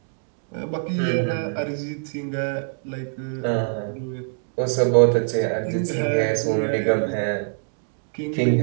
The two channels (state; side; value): silent; left; digital silence